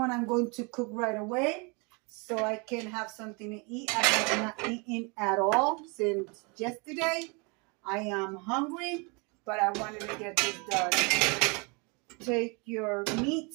I'm going to cook right away, so I can have something to eat. I have not eaten at all since yesterday. I am hungry, but I wanted to get this done. Take your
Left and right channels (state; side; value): quieter; left; 31.0 dB